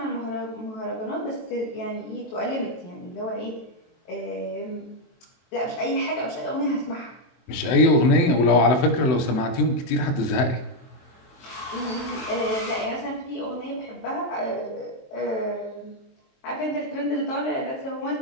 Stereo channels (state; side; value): late; right; 24 ms